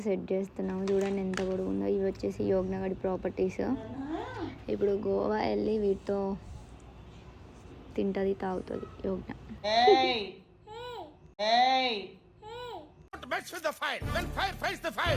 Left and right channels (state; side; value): identical; both; correlation 1.00